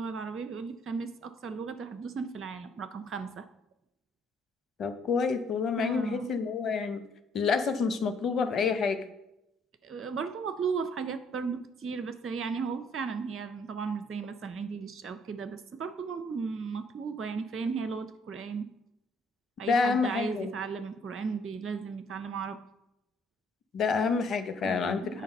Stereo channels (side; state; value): both; normal; correlation 0.65